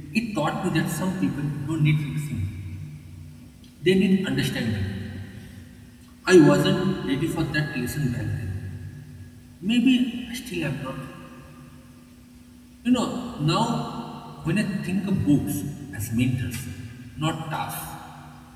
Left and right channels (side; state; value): both; identical; correlation 1.00